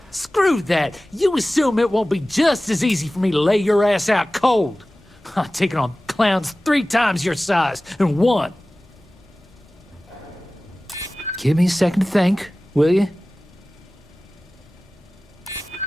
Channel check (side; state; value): both; normal; correlation 0.97